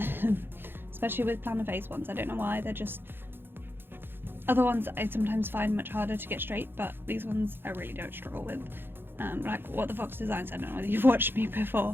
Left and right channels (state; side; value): late; left; 0.10 ms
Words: especially with Plannerface ones. I don't know why, they're just... Other ones I sometimes find much harder to get straight, but these ones I really don't struggle with. Like What the Fox Designs, I don't know whether you've watched me